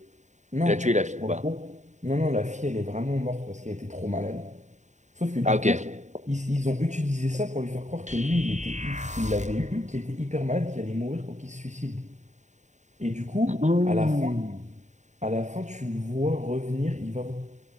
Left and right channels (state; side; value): late; left; 0.34 ms